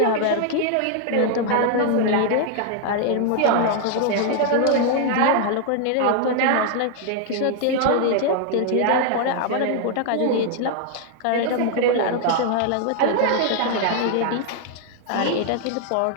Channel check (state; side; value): different; both; correlation 0.00